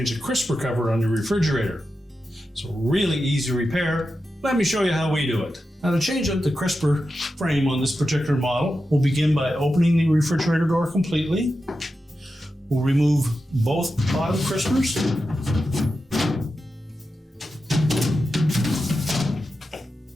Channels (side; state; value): both; normal; correlation 0.90